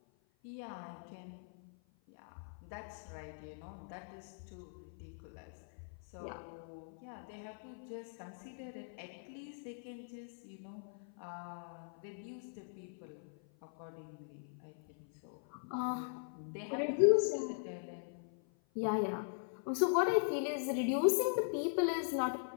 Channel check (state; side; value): silent; right; 51 dB below the other